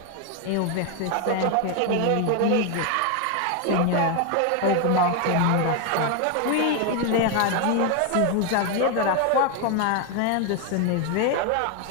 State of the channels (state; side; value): different; both; correlation 0.01